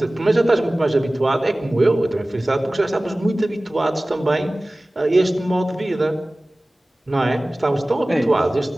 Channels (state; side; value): normal; both; correlation 0.98